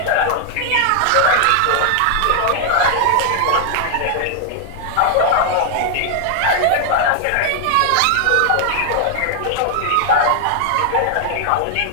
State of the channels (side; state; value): both; different; correlation 0.00